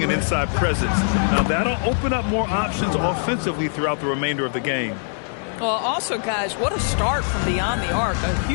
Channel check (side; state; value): right; silent; digital silence